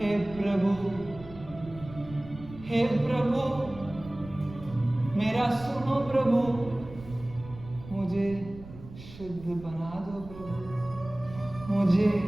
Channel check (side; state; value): right; noise; rumble, 16 dB below the sound